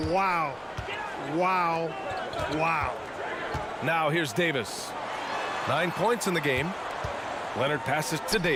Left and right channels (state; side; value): identical; both; correlation 1.00